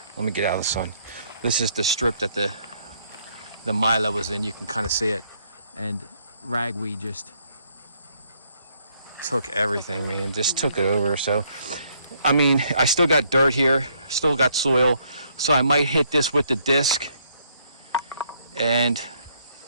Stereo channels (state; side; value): inverted; both; correlation -0.69